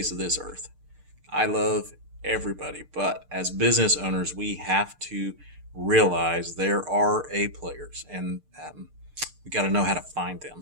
of this earth. I love everybody, but as business owners, we have to realize there are A players, and we got to know how to find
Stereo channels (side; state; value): left; late; 6.7 ms